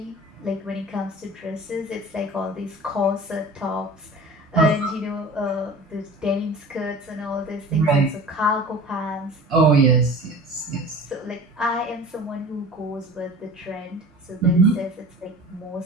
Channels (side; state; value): both; normal; correlation 0.40